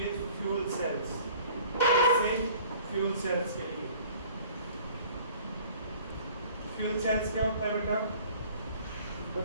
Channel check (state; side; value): inverted; both; correlation -0.51